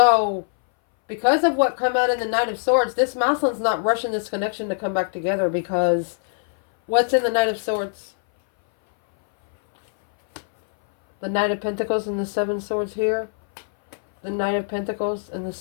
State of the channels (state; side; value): silent; right; 61 dB below the other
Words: because of what come out in the Knight of Swords, this masculine's not rushing this connection to come back together, because what's in the Knight of Swords? The Knight of Pentacles and the 7 swords here. The Knight of Pentacles and the